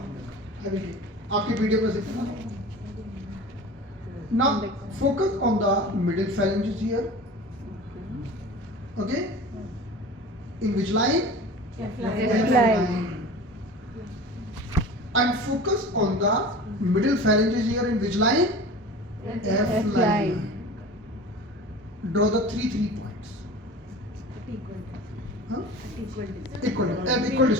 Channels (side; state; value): both; normal; correlation 0.37